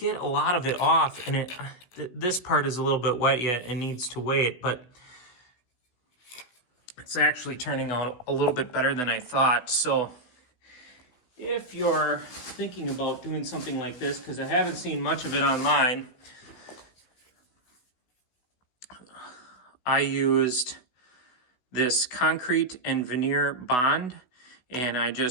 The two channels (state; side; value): late; right; 16 ms